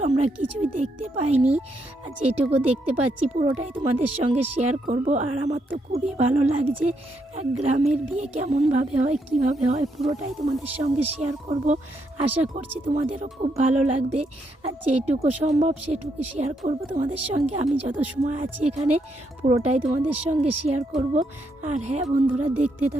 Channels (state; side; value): normal; both; correlation 0.77